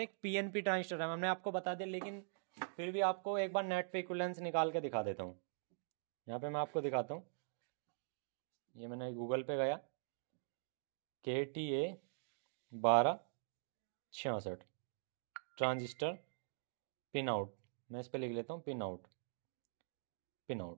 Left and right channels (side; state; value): left; silent; digital silence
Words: एक पीएनपी ट्रांजिस्टर है, हमने आपको बता दिया, लेकिन फिर भी आपको एक बार नेट पे इक्विवेलेंस निकाल के दिखा देता हूँ। यहाँ पे मैं आपको दिखाता हूँ, ये मैंने गूगल पे गया, KTA 1266 ट्रांजिस्टर पिन आउट, मैं इस पर लिख लेता हूँ पिन आउट, पिन आउट,